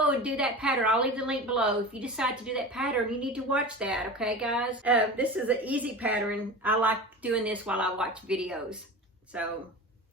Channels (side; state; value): both; normal; correlation 0.31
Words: and do that pattern, I'll leave the link below. If you decide to do that pattern, you need to watch that, okay guys? This is an easy pattern. I like doing this while I watch videos. So,